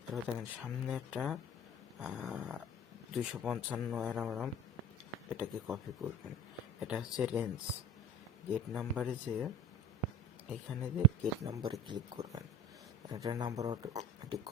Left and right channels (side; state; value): both; normal; correlation 0.38